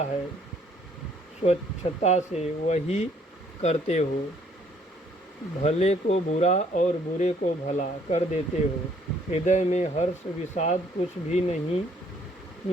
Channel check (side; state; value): both; normal; correlation 0.63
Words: है स्वच्छता से वही करते हो। भले को बुरा और बुरे को भला कर देते हो। हृदय में हर्ष विषाद कुछ भी नहीं